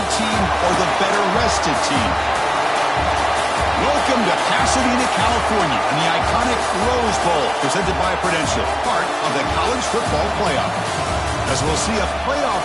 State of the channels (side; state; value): both; identical; correlation 1.00